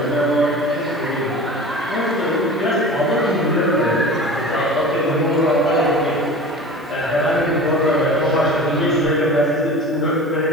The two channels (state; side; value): normal; both; correlation 0.37